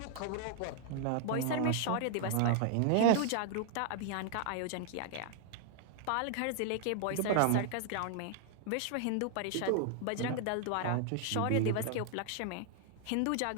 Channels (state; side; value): different; both; correlation -0.01